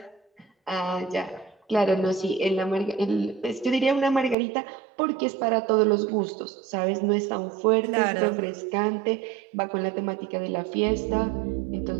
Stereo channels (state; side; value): drops out; left; at 4.4 s